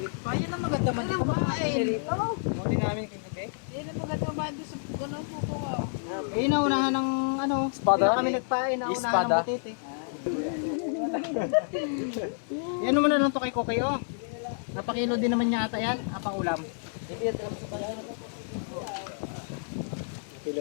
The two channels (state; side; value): silent; right; 58 dB below the other